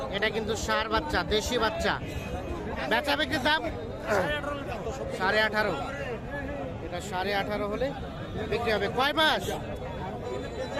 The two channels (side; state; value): both; identical; correlation 1.00